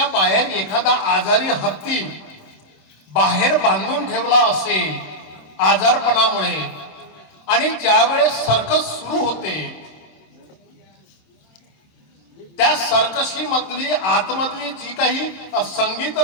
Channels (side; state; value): right; late; 26 ms